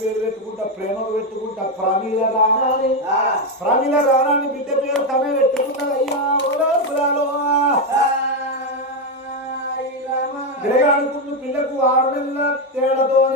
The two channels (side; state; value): both; normal; correlation 0.06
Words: పేరు పెట్టుకుంటా ప్రేమకు పెట్టుకుంటా ప్రమీల రాణాని ప్రమీల రాణాని బిడ్డ పేరు తనే పెట్టుకుంటా అయ్యా ఓలో పురాలో పిల్లగాడుకున్న పిల్లకు 6 నెలల